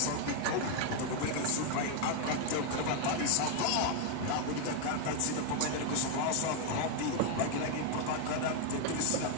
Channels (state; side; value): different; both; correlation 0.01